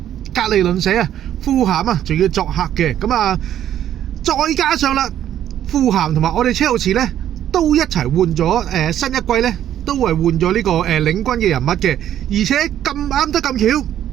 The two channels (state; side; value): quieter; left; 11.1 dB